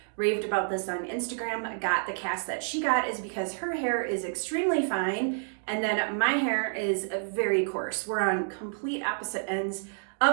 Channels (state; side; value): silent; left; digital silence